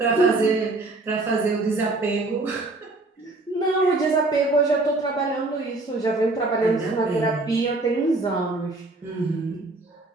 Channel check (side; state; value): left; quieter; 3.1 dB